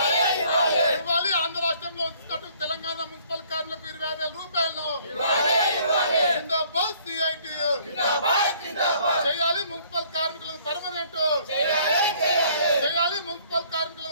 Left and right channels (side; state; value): both; inverted; correlation -0.59